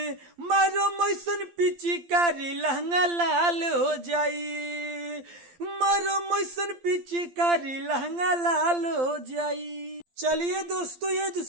मैसन पिचकारी लहंगा लाल हो जाई। मारो मैसन पिचकारी लहंगा लाल हो जाई। चलिए दोस्तों, ये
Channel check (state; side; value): late; left; 12 ms